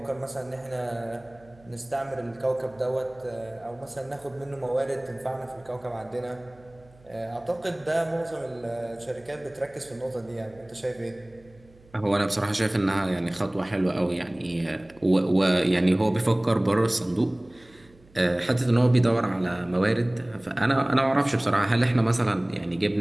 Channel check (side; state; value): right; noise; hum, 27 dB below the sound